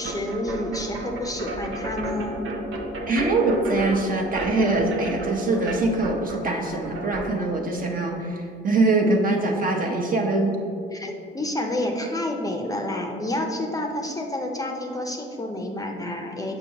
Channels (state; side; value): normal; both; correlation 0.47